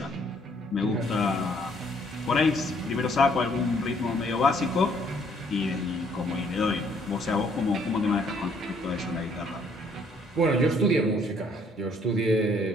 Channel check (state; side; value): normal; both; correlation 0.65